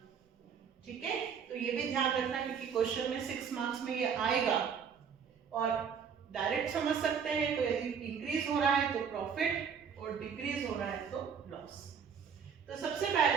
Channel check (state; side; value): quieter; left; 6.9 dB